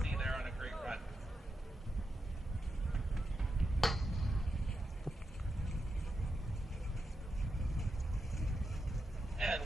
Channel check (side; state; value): both; normal; correlation 0.87